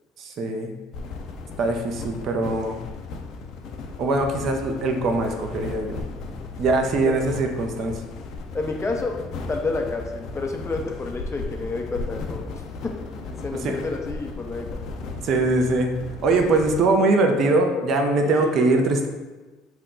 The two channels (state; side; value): normal; both; correlation 0.55